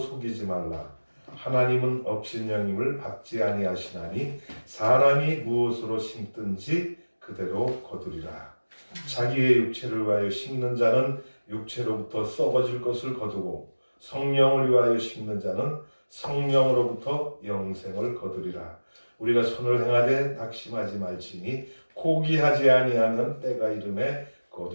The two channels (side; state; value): both; inverted; correlation -1.00